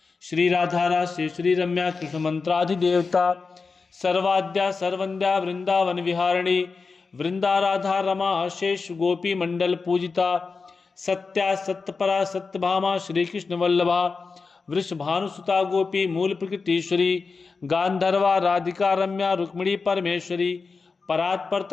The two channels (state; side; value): quieter; right; 4.6 dB